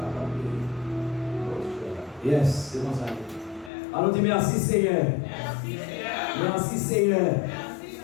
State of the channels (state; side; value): drops out; right; at 3.7 s